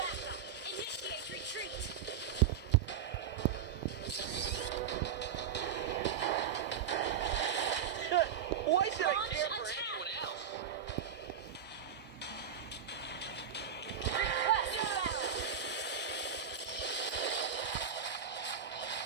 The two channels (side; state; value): left; quieter; 7.9 dB